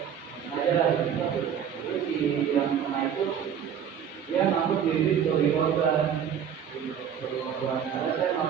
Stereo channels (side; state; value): left; quieter; 8.3 dB